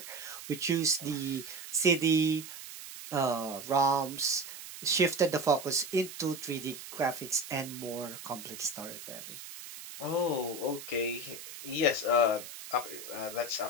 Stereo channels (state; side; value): noise; right; hiss, 12 dB below the sound